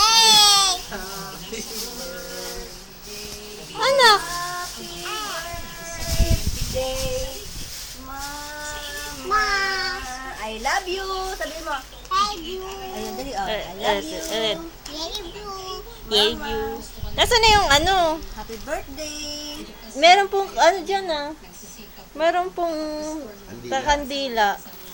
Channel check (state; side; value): identical; both; correlation 1.00